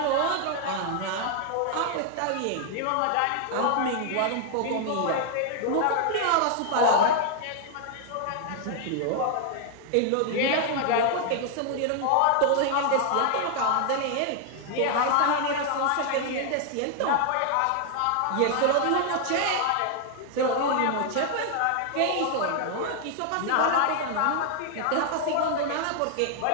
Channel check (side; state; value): both; different; correlation 0.00